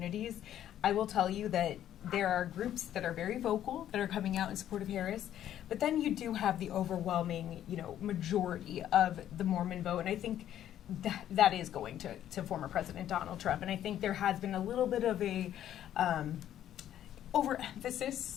I will tell you that there are groups that are very vocal that are coming out in support of Harris, but then you do have the overwhelming, majority of the Mormon vote, and I think that is going to former President Donald Trump. And I think there has been a little bit of a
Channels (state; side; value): quieter; right; 11.3 dB